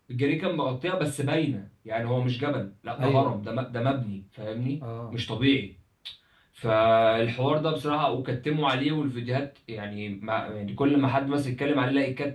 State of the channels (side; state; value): both; identical; correlation 1.00